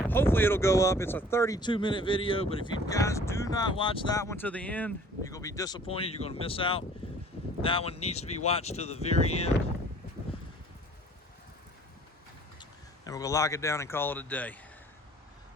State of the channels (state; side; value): normal; both; correlation 0.52